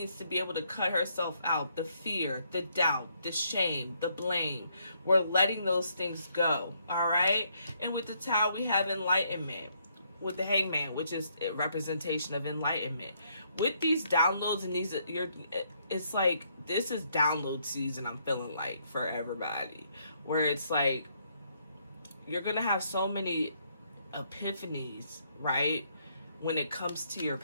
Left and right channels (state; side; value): inverted; both; correlation -0.72